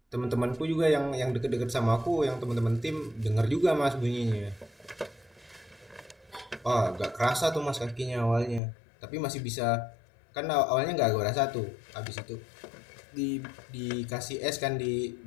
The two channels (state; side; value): drops out; right; at 8.6 s